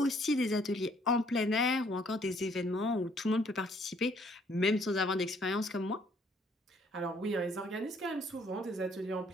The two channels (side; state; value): both; normal; correlation 0.64